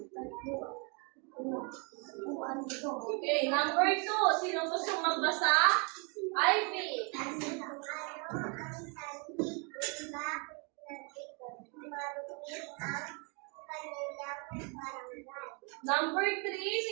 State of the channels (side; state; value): left; quieter; 34.4 dB